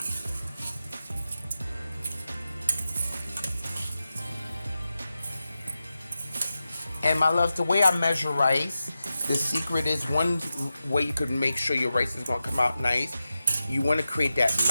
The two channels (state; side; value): inverted; both; correlation -0.91